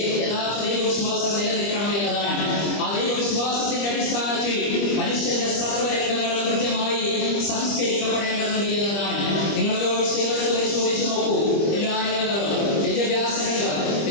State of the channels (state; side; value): late; right; 25 ms